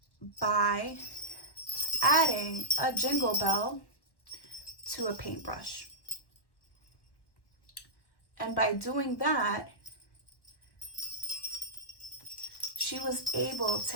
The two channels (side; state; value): right; late; 1.1 ms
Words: by adding a jingle bell to a paintbrush. And by doing that, she was able